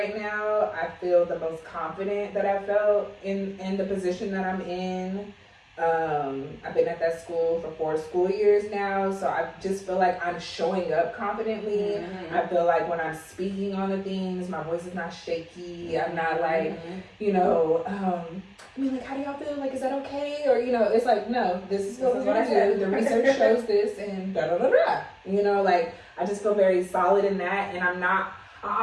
now, I feel the most confident that I've felt in the position that I'm in. I've been at that school for 4 school years now, so I just feel like I'm showing up confidently. I feel like when I'm speaking on the things, my voice is not shaky. I'm not like, you know, I mean, like, how do y'all feel? Like, is that okay? Or, you know, it's like, no, this is what I do. The research shows this, and da-da-da-da. You know, like, I just feel very solid in that, and I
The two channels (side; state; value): both; identical; correlation 1.00